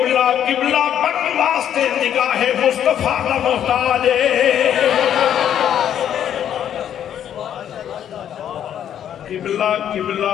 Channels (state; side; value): quieter; right; 9.9 dB